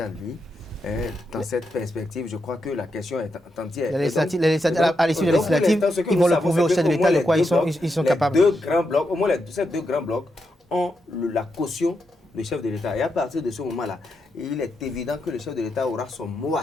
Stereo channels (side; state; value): both; normal; correlation 0.84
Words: lui, dans cette perspective, je crois que la question est entière. À l'issue de la législative, ils vont le prouver au chef de l'État de quoi ils sont capables. Au moins ces 2 grands blocs ont la caution du chef de l'État. Et à partir de ce moment-là, il est évident que le chef de l'État aura son mot